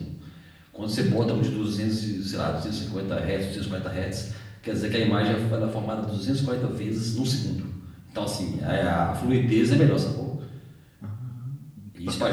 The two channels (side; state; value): both; identical; correlation 1.00